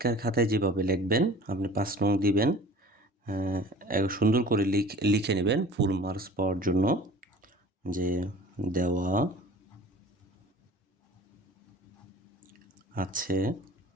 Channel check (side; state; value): both; normal; correlation 0.44